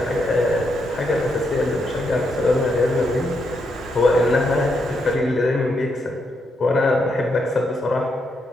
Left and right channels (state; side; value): normal; both; correlation 0.80